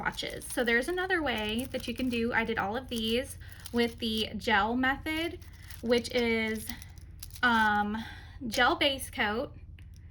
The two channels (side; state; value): both; identical; correlation 1.00